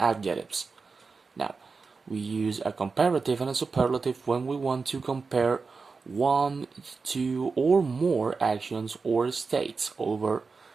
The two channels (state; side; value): quieter; left; 4.6 dB